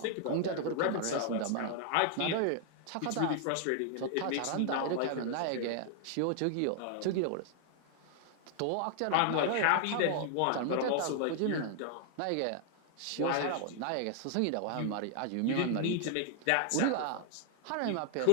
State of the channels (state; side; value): different; both; correlation 0.00